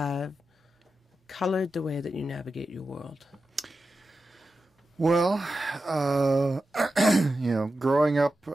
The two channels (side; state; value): both; normal; correlation 0.91